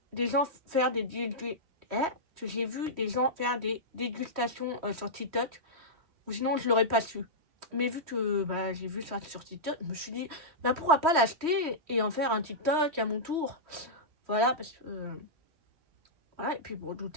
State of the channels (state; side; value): late; left; 3.1 ms